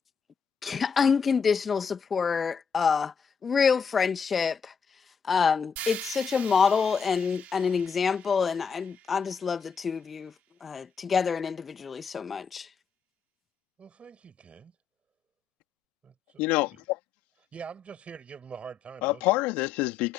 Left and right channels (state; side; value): quieter; right; 6.3 dB